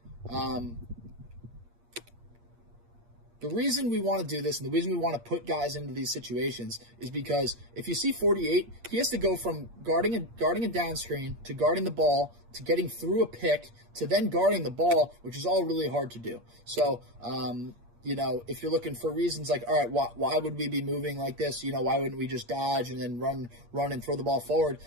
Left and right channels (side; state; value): left; late; 8.5 ms